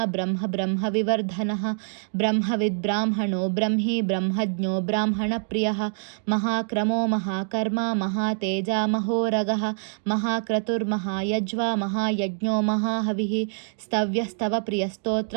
ब्रह्म ब्रह्मविवर्धनः ब्रह्मविद्ब्राह्मणो ब्रह्मी ब्रह्मज्ञो ब्राह्मणप्रियः महाक्रमो महाकर्मा महातेजा महोरगः महाक्रतुर्महायज्वा महायज्ञो महाहविः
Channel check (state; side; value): silent; left; digital silence